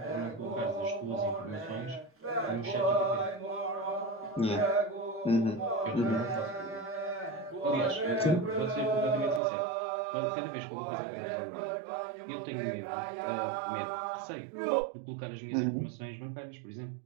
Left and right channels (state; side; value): drops out; left; at 9.4 s